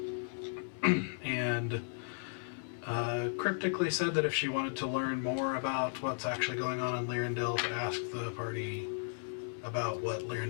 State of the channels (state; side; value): silent; right; 54 dB below the other